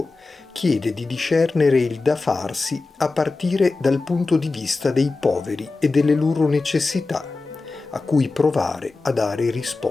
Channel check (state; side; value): quieter; right; 3.7 dB